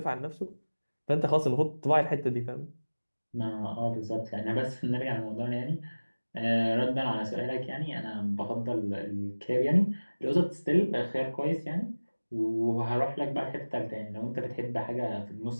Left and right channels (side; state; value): both; inverted; correlation -1.00